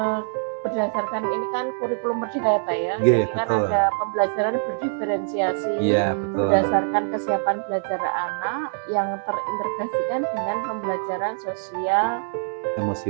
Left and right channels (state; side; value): silent; left; digital silence